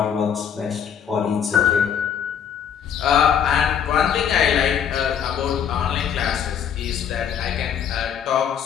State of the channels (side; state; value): right; quieter; 8.4 dB